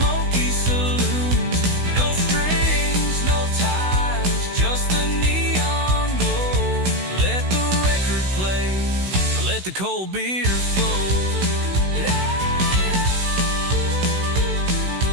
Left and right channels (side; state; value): left; late; 16 ms